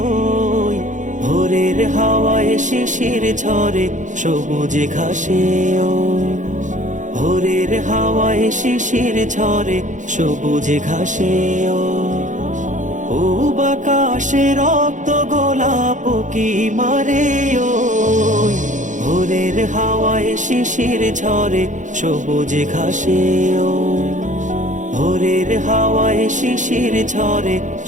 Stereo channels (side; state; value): left; late; 0.36 ms